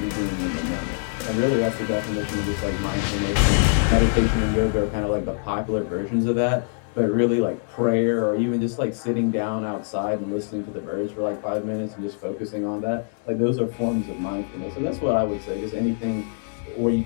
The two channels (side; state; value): right; silent; 63 dB below the other